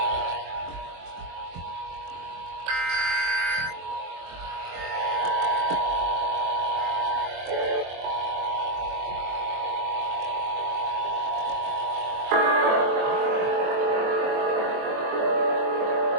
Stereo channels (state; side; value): late; left; 23 ms